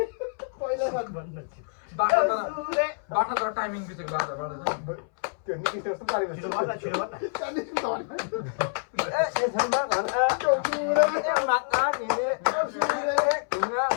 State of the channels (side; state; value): right; silent; 60 dB below the other